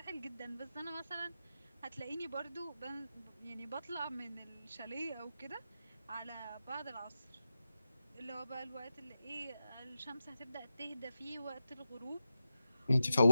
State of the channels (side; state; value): both; inverted; correlation -0.91